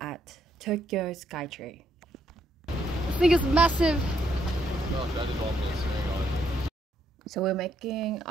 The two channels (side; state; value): both; normal; correlation 0.74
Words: Tokyo Skytree. This thing is massive! So we're making